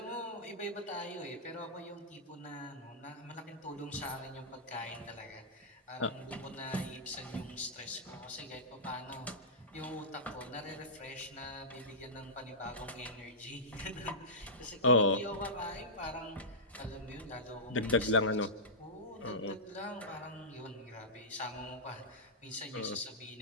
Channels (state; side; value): normal; both; correlation -0.15